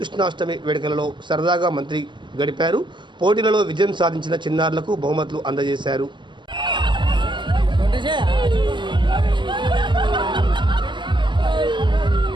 వేడుకలలో సరదాగా మంత్రి గడిపారు. పోటీలలో విజయం సాధించిన చిన్నారులకు బహుమతులు అందజేశారు.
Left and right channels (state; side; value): late; left; 0.22 ms